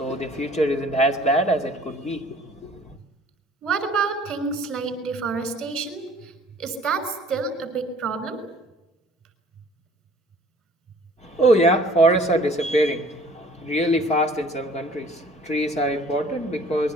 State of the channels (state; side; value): normal; both; correlation 0.53